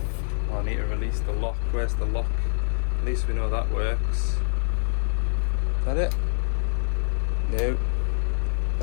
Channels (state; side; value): silent; right; digital silence